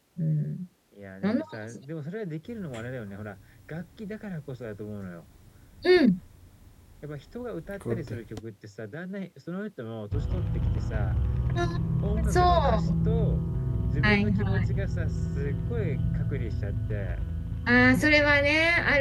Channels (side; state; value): both; identical; correlation 1.00